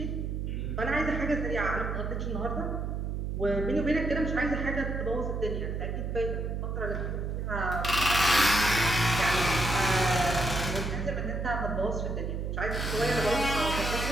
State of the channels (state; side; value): noise; right; hum, 2 dB below the sound